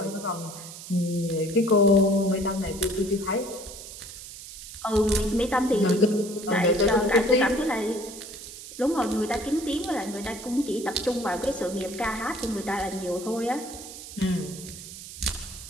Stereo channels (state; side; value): noise; right; hiss, 13 dB below the sound